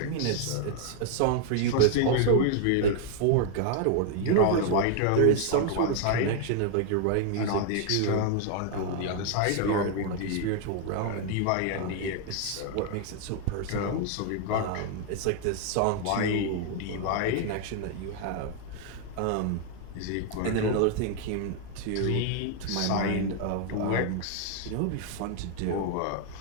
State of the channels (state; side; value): different; both; correlation 0.00